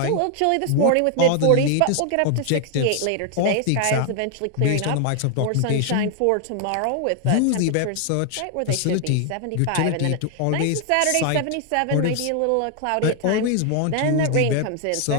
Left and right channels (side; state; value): both; different; correlation 0.00